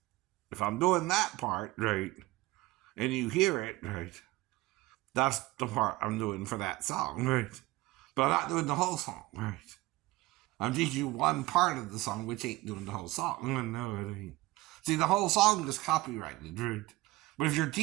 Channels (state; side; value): quieter; left; 19.5 dB